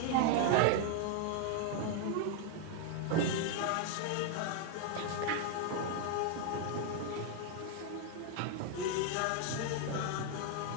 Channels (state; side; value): different; both; correlation 0.01